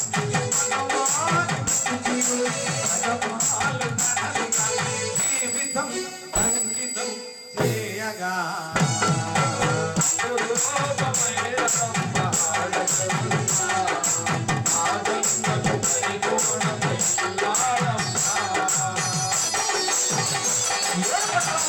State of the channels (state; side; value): identical; both; correlation 1.00